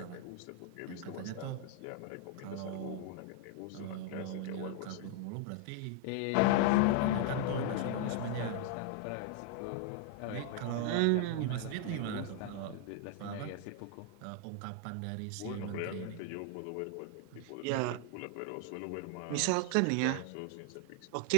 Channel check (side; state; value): both; different; correlation 0.00